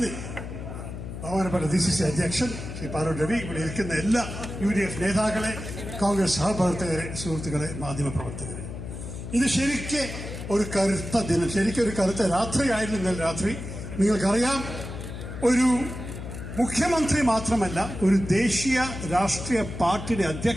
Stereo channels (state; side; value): noise; left; hum, 9 dB below the sound